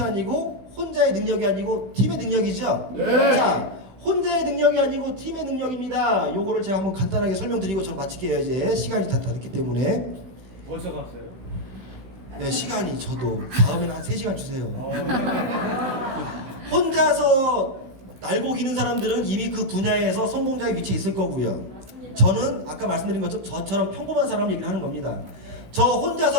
아니고 혼자의 능력이 아니고 팀의 능력이죠. 네. 자, 혼자의 능력이 아니고 팀의 능력입니다. 요거를 제가 한번 간단하게 설명드리고 저는 마칠게요. 이제 시간이 다 됐기 때문에. 벌써 갔어요? 네, 시간이 저도 다음에는 한 3시간 주세요. 혼자서 날고 기는 사람들은 이미 그 분야에서 성공자의 위치에 있을 거고요. 저는 아까 말씀드린 것처럼 저처럼 평범한 사람 얘기를 하는 겁니다. 저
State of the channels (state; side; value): late; left; 16 ms